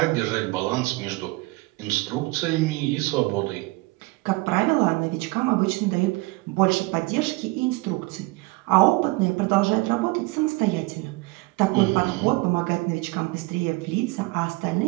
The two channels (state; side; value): quieter; left; 23.3 dB